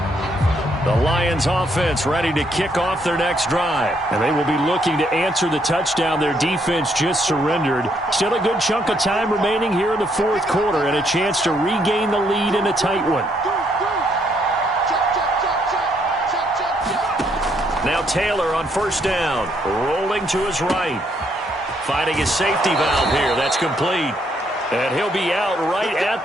The Lions offense ready to kick off their next drive. And they will be looking to answer the touchdown their defense just surrendered. Still a good chunk of time remaining here in the 4th quarter and a chance to regain the lead in a tight one. Now Taylor on 1st down. Rolling to his right. Finding his safety valve here. That's complete. And he'll be out right at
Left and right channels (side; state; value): both; normal; correlation 0.72